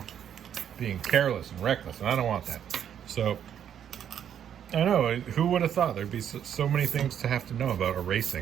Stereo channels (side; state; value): left; quieter; 9.2 dB